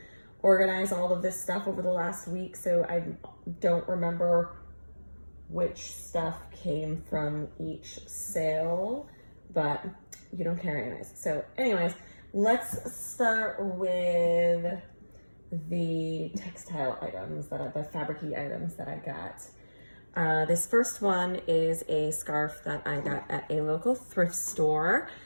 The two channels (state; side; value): inverted; both; correlation -1.00